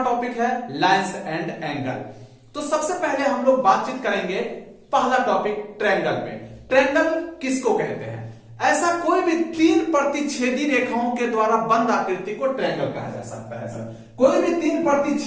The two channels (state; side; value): identical; both; correlation 1.00